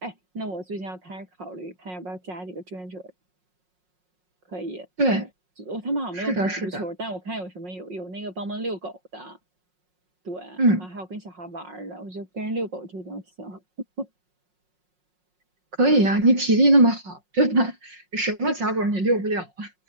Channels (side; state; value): left; late; 5.5 ms